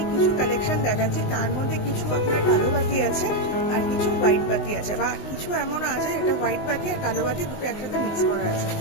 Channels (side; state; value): right; late; 19 ms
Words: কিছু কালেকশন দেখাচ্ছি, তার মধ্যে কিছু আপনার কালো বাতি আছে আর কিছু হোয়াইট বাতি আছে, বা কিছু এমন আছে এটা হোয়াইট বাতি আর কালো বাতি দুটো একসাথে মিক্স করা আছে।